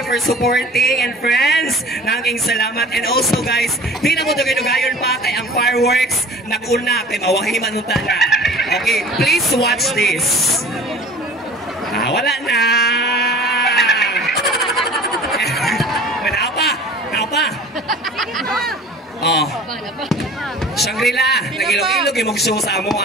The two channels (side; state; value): both; normal; correlation 0.44